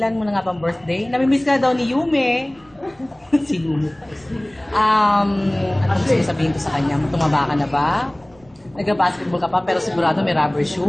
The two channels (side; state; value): right; noise; rumble, 29 dB below the sound